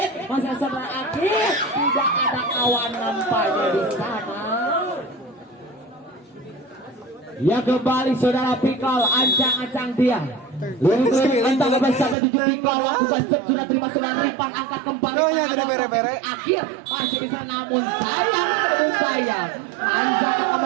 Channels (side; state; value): left; drops out; at 12.2 s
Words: masih saudara Akil, tidak ada kawan nampaknya di sana. Ya kembali saudara Pikal, ancang-ancang dia, lirik-lirik entah kepada siapa 7 Pikal, lakukan sudah terima saudara Ripan, angkat kembali Akil, masih bisa namun sayang anjak